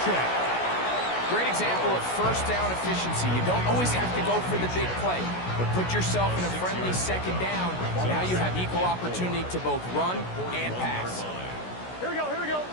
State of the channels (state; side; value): late; right; 16 ms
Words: Great example of 1st down efficiency. You don't always have to go for the big play, but put yourself in a friendly 2nd down. Now you have equal opportunity to both run and pass. Here we go.